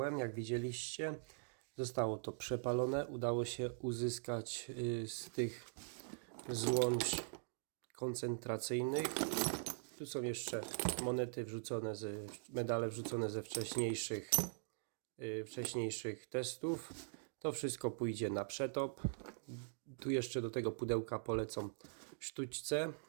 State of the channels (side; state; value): left; silent; digital silence